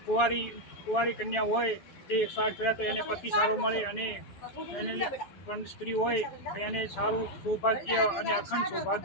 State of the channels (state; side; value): late; right; 11 ms